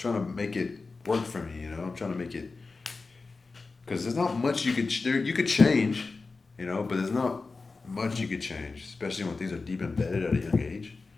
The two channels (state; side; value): quieter; right; 4.0 dB